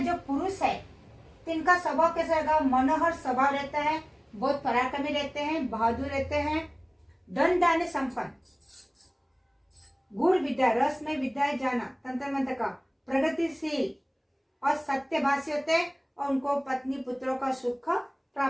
जो पुरुष है तो इनका स्वभाव कैसा रहेगा, मनोहर स्वभाव रहता है, बहुत पराक्रमी रहते हैं, बहादुर रहते हैं, धन दाने संपन्न, गुण विद्या, रस में विद्याएं जाना, तंत्र मंत्र का, प्रगतिशील और सत्यभाषी होते हैं और उनको पत्नी पुत्रों का सुख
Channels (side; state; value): both; identical; correlation 1.00